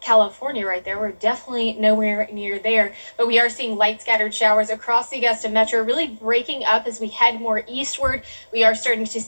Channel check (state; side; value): inverted; both; correlation -1.00